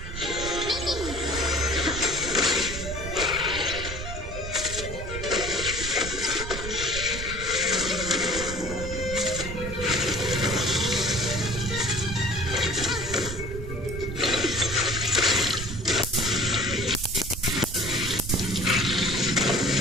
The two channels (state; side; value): noise; right; rumble, 7 dB below the sound